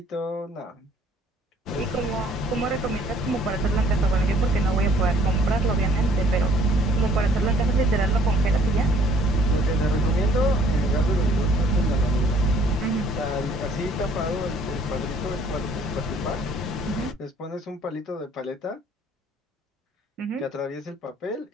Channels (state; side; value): normal; both; correlation 0.59